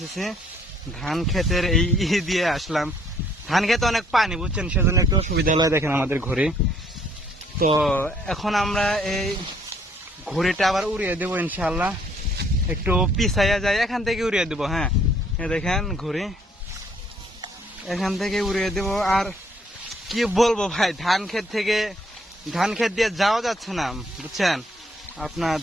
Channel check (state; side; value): normal; both; correlation 0.65